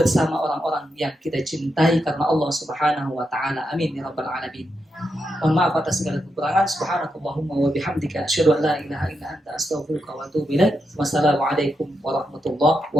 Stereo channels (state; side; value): normal; both; correlation 0.84